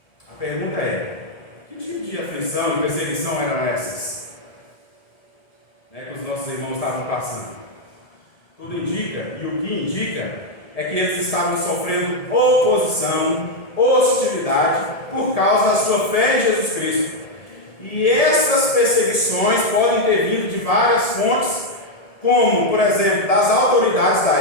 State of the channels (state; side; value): late; right; 1.7 ms